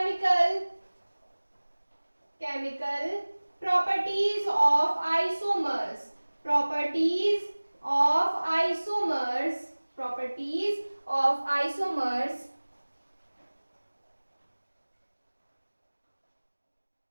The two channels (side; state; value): both; inverted; correlation -1.00